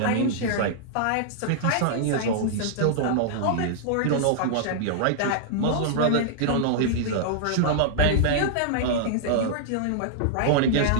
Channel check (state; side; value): different; both; correlation -0.01